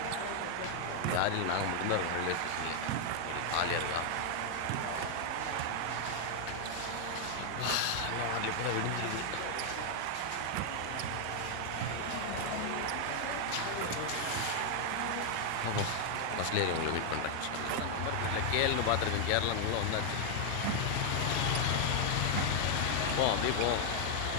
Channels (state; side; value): different; both; correlation 0.00